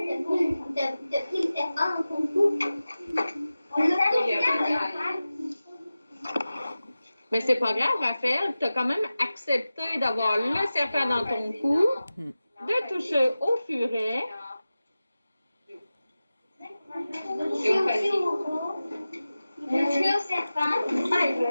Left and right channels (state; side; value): inverted; both; correlation -0.95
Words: de pris le serpent en concours. On l'a fait. Mais c'est pas grave, Raphaël. Tu as quand même accepté d'avoir le serpent dans ton cou, de toucher au furet. Toucher aussi au toucher au serpent.